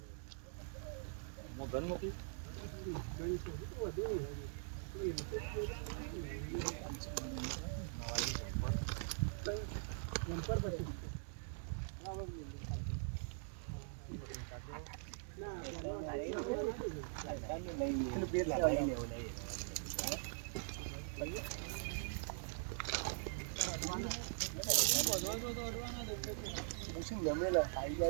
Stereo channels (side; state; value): left; silent; digital silence